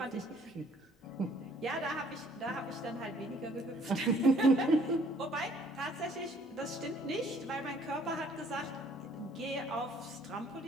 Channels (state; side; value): normal; both; correlation 0.60